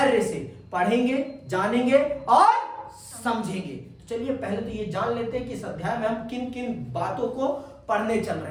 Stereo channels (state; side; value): identical; both; correlation 1.00